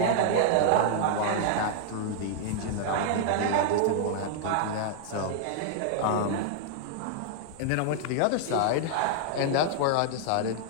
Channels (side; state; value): both; different; correlation -0.01